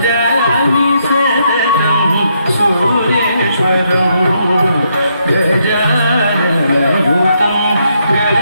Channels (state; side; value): inverted; both; correlation -0.76